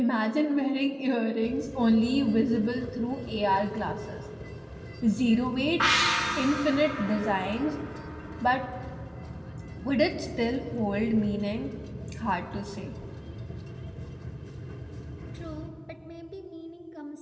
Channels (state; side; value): identical; both; correlation 1.00